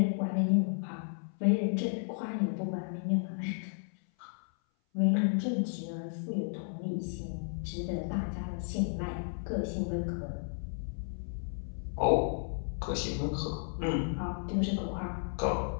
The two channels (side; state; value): right; silent; 56 dB below the other